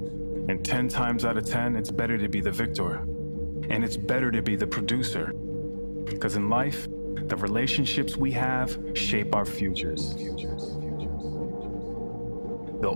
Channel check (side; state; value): both; inverted; correlation -1.00